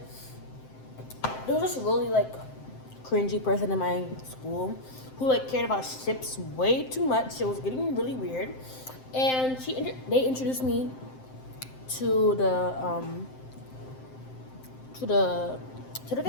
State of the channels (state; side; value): late; right; 7.7 ms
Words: There was this really like cringy person in my school who like cared about ships way too much. It was getting really weird, and they introduced me to to the to the